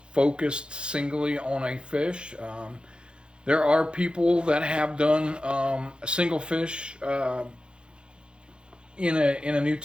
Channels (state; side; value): late; left; 0.053 ms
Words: focused singly on a fish. There are people that have done a single fish in a new